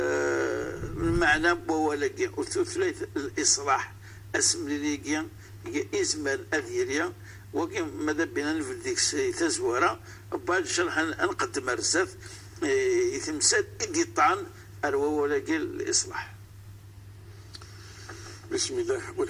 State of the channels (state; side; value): identical; both; correlation 1.00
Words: بوالكي وثلاث الإصلاح اسم ليكيا إزمال أذيريا وكي ماذا بينا نفل ديك تزوارا وبعد شرح نقدم رزاف يتمسد إقطان أروا ولكي الإصلاح. بسم الله